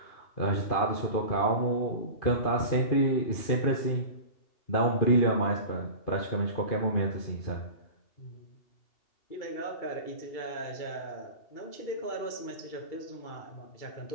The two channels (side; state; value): right; late; 2.7 ms